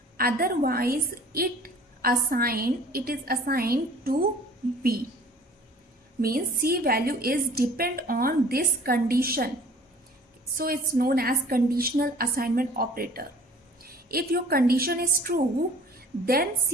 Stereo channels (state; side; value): normal; both; correlation 0.49